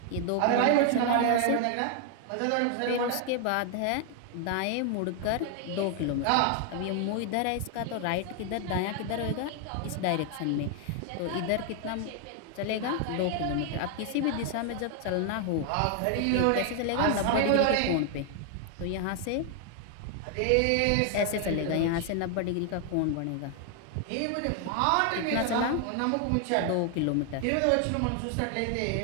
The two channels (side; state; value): both; different; correlation 0.00